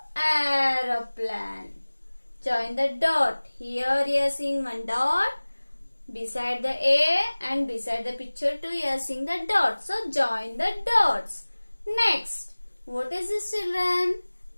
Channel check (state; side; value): inverted; both; correlation -1.00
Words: aeroplane. Join the dot. Here you are seeing one dot. Beside the A and beside the picture too, you are seeing the dot. So, join the dots. Next, what is this, children?